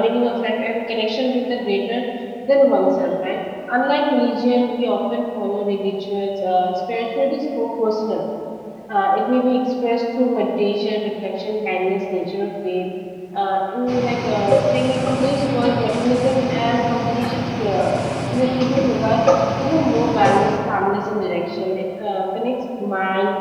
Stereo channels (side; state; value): both; identical; correlation 1.00